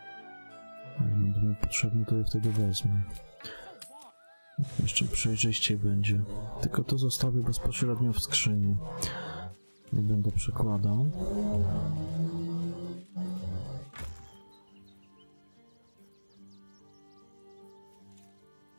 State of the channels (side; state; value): both; inverted; correlation -1.00